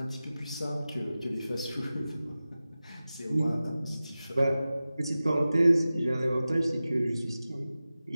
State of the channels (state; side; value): inverted; both; correlation -0.95